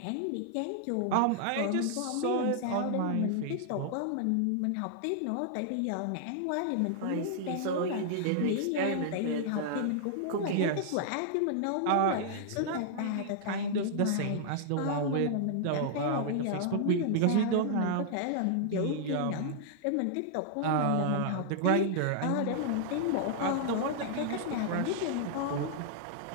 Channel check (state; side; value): different; both; correlation -0.01